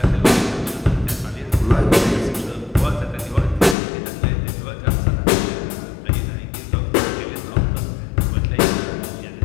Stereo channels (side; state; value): right; drops out; at 3.8 s